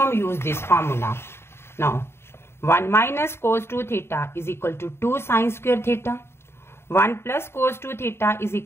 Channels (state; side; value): late; right; 0.12 ms